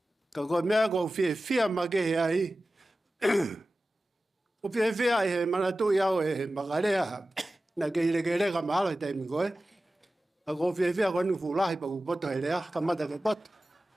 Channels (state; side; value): normal; both; correlation 0.95